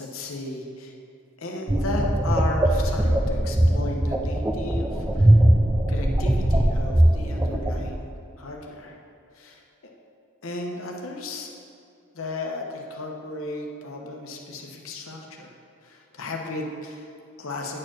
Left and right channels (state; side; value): normal; both; correlation 0.88